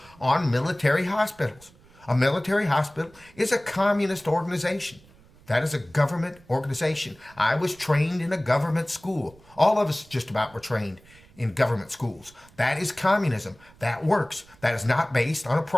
on military hospitals. A military hospital is a communist organization. That is a government organization. I was trained in a government school. All of us just about were trained in government schools. That is communism. That works. That is not based on a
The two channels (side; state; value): right; noise; rumble, 26 dB below the sound